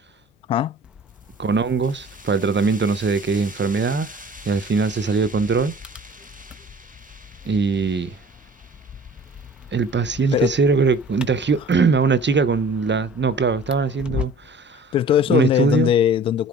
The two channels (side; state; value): both; normal; correlation 0.47